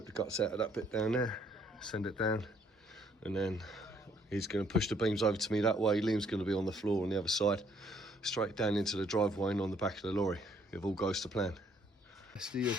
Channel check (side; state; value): both; normal; correlation 0.66